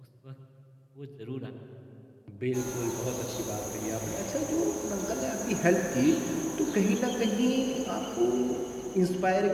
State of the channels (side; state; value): both; identical; correlation 1.00